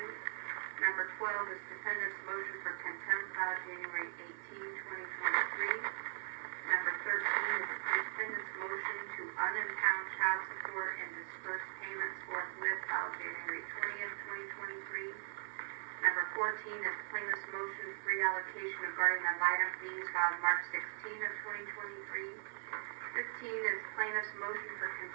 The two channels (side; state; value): left; silent; digital silence